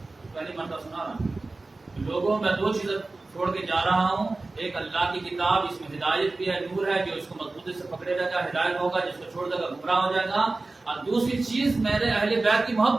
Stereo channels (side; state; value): left; quieter; 3.3 dB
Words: پہلی مرتبہ سنا رہا ہوں. لوگوں میں دو چیزیں چھوڑ کے جا رہا ہوں, ایک اللہ کی کتاب, اس میں ہدایت بھی ہے, نور ہے, جو اس کو مضبوطی سے پکڑے رہے گا ہدایت ہوگا, جس کو چھوڑ دے گا گمراہ ہو جائے گا. اور دوسری چیز میرے اہل بیت کی